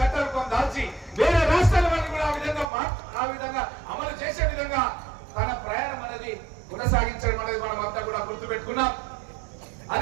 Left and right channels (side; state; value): left; drops out; at 2.7 s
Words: దాల్చి వేరే రాష్ట్రాల వరకు కూడా ఆ విధంగా అమలు చేసే విధంగా తన ప్రయాణం అనేది కొనసాగించడం అనేది మనం అంతా కూడా గుర్తుపెట్టుకున్నాం.